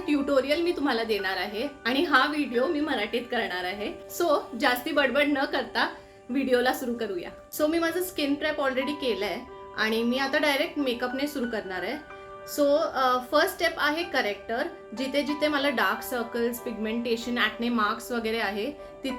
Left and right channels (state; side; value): identical; both; correlation 1.00